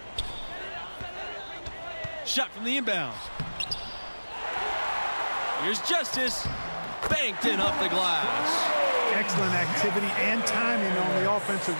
Shot from the inbound. Here's Justice. Banked in off the glass. Excellent activity and timing on the offensive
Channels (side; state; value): both; inverted; correlation -1.00